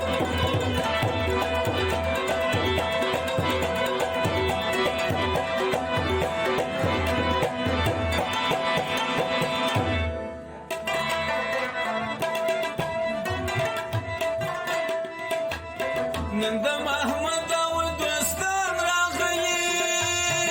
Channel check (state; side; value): identical; both; correlation 1.00